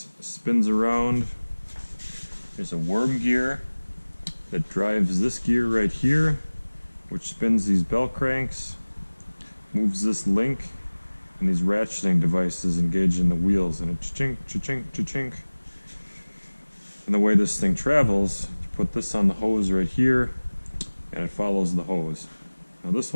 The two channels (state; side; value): inverted; both; correlation -1.00